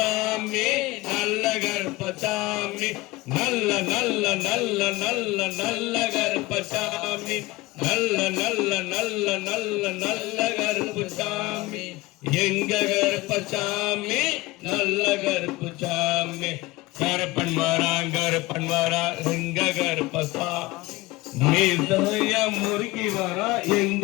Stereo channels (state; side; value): quieter; right; 20.5 dB